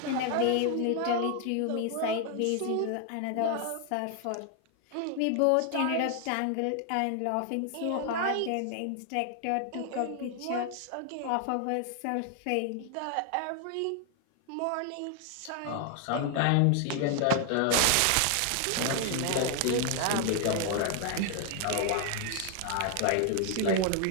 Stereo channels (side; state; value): both; different; correlation 0.00